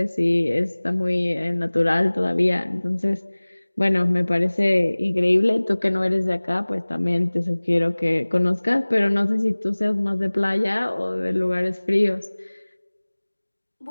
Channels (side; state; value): both; inverted; correlation -1.00